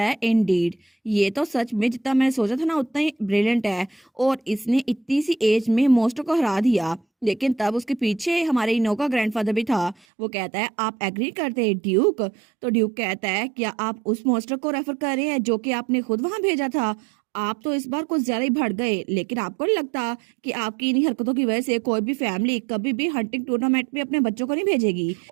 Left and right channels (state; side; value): drops out; left; at 10.0 s